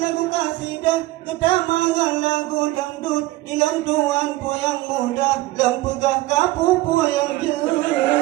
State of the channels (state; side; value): quieter; left; 18.2 dB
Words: kasidah kedamangan lagu dangdut ilan tuan yang muda dan pegah kapu yang jauh.